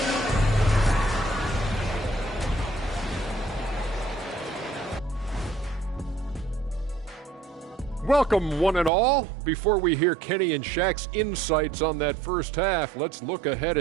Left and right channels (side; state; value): left; drops out; at 8.9 s